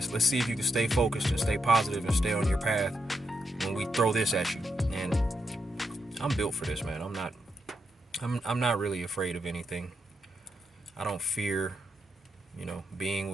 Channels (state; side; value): normal; both; correlation 0.82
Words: Let's see if you can stay focused and stay positive and stay on your path when we throw this at you. And I'm built for this, man. I'm not really afraid of anything. I don't fear, being